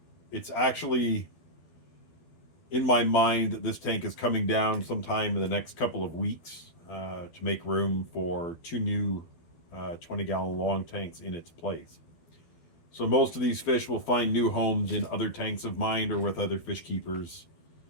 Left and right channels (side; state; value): right; late; 12 ms